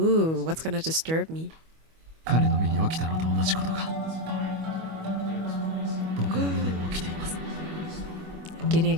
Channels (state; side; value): late; left; 25 ms